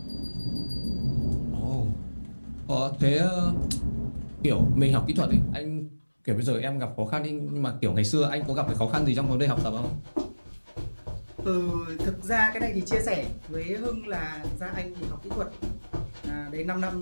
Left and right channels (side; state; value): both; inverted; correlation -1.00